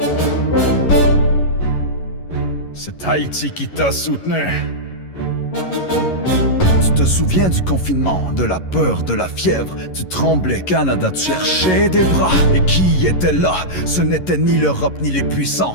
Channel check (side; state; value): right; late; 11 ms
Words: C'est Haïti qui t'a soutenu. Tu te souviens du confinement, de la peur, de la fièvre. Tu tremblais, Canada, tu cherchais des bras. Et qui était là? Ce n'était ni l'Europe ni les puissants,